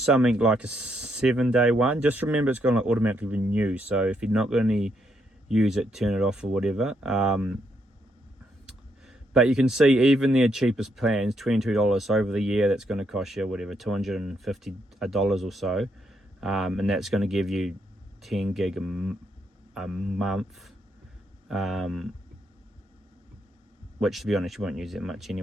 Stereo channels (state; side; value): normal; both; correlation 0.77